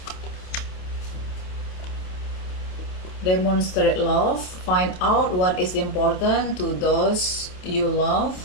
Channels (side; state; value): right; late; 27 ms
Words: Demonstrate love, find out what is important to those you